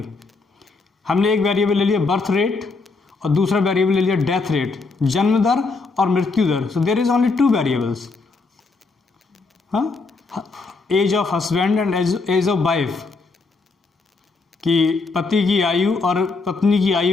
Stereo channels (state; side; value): quieter; right; 4.0 dB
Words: हमने एक वेरिएबल ले लिया बर्थ रेट और दूसरा वेरिएबल ले लिया डेथ रेट, जन्म दर और मृत्यु दर, so there is only two variables. हाँ, age of husband and age of wife, कि पति की आयु और पत्नी की